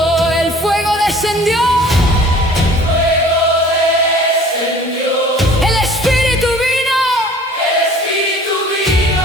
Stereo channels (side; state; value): both; normal; correlation 0.48